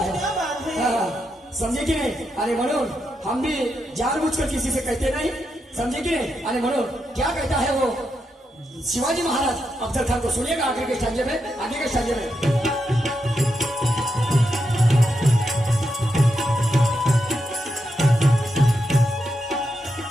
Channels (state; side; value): normal; both; correlation 0.84